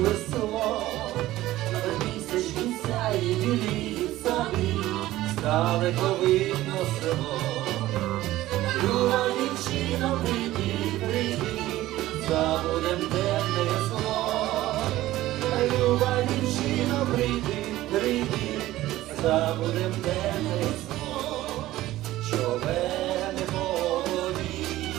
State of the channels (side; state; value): left; quieter; 15.8 dB